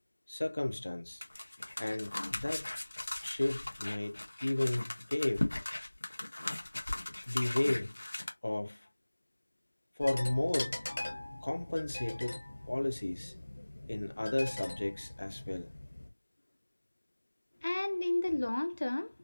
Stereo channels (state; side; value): inverted; both; correlation -1.00